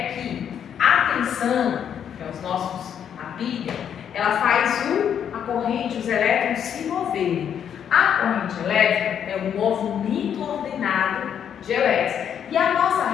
que a tensão, que é a pilha, ela faz a corrente, os elétrons se moverem. A corrente elétrica é um movimento ordenado de elétrons. E a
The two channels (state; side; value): quieter; right; 8.7 dB